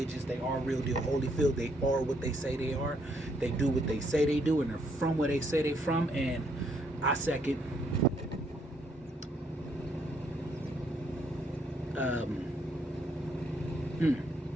They are real deal Holyfield. They are what they say they are. They do what they say they do, and they're from where they say they're from. And I second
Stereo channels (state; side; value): normal; both; correlation 0.72